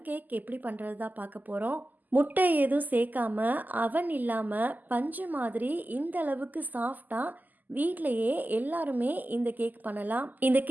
கேக் எப்படி பண்ணுறது தான் பார்க்க போகிறோம். முட்டை எதுவும் சேர்க்காம அவன் இல்லாமல் பஞ்சு மாதிரி இந்த அளவுக்கு சாஃப்டாக வீட்டிலையே எல்லாருமே இந்த கேக் பண்ணலாம். இந்த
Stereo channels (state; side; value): late; left; 0.084 ms